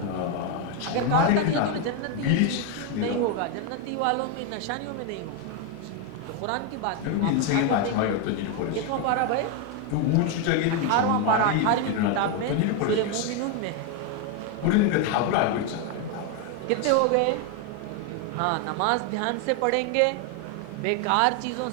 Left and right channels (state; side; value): different; both; correlation 0.01